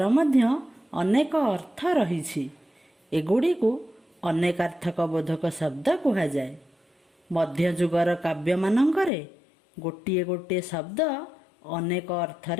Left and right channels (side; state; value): right; drops out; at 9.1 s